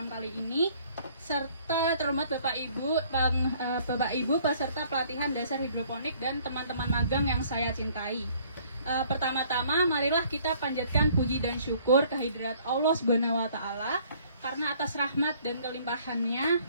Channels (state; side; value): inverted; both; correlation -0.59